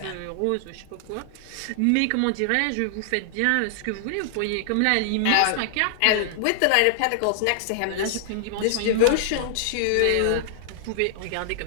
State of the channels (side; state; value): both; different; correlation -0.01